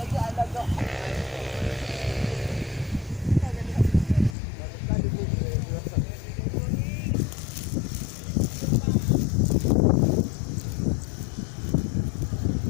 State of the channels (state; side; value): drops out; right; at 4.4 s